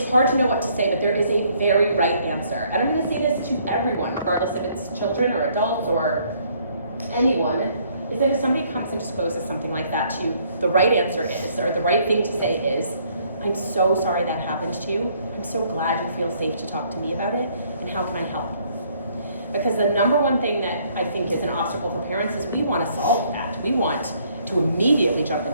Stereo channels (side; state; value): both; inverted; correlation -0.65